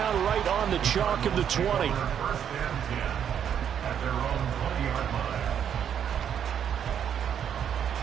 right on the chalk of the 20. First and 10 at their own 20-yard line.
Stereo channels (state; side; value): quieter; left; 8.7 dB